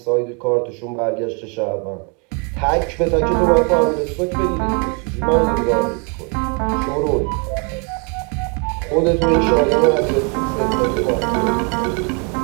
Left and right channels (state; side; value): quieter; left; 35.9 dB